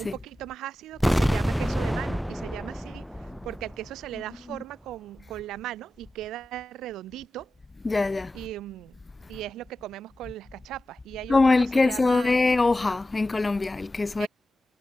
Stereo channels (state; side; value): normal; both; correlation 0.93